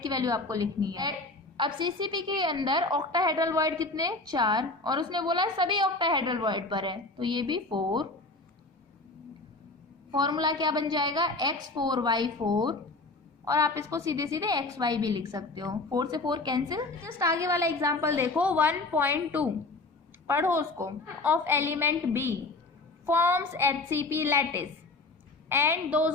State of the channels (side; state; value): right; quieter; 3.3 dB